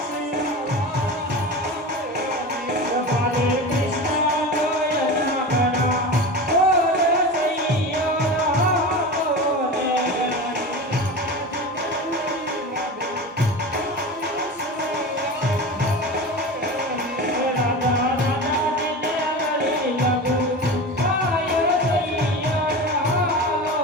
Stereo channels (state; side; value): normal; both; correlation 0.29